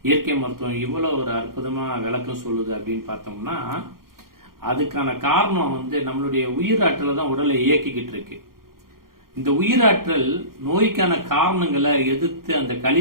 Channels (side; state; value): left; late; 0.92 ms